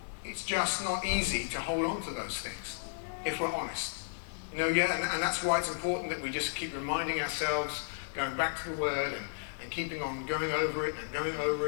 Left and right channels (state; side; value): silent; right; 55 dB below the other